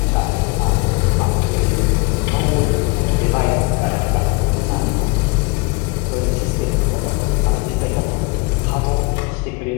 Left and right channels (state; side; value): quieter; right; 28.4 dB